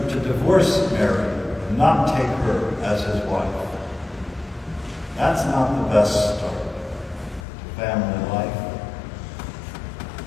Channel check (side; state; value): right; drops out; at 7.5 s